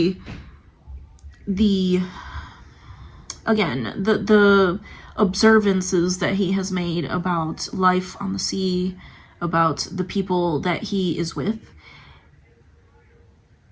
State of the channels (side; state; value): both; identical; correlation 1.00